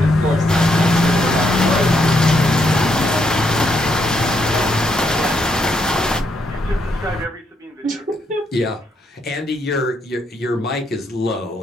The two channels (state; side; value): normal; both; correlation 0.76